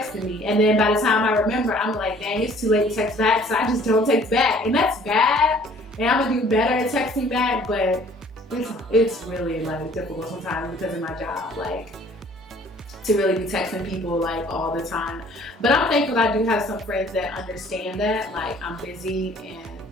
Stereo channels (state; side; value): normal; both; correlation 0.55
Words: me. And then by the time I remember, I'm like, dang, it's too late to text back, so I just don't text back. And that's bad, and I'm gonna do better at texting back, but it's really like difficult sometimes because of my job, like to really be texting people like all the time. But I'm thankful that I do have some friends that understand that, like I'm busy and,